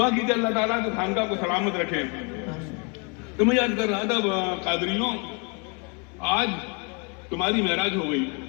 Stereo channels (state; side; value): quieter; right; 33.4 dB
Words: کیجیے اللہ تعالیٰ کہ خانقاہ کو سلامت رکھے. تو میں یاد کر رہا تھا قادریوں، آج تمہاری معراج ہو گئی.